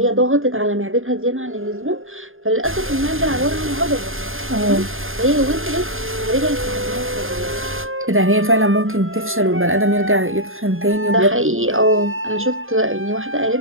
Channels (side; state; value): left; late; 0.60 ms